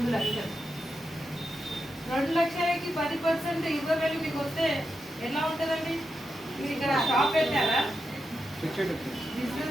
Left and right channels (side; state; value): both; normal; correlation 0.87